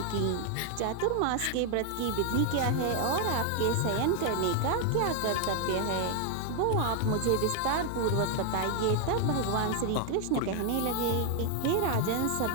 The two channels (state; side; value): different; both; correlation 0.01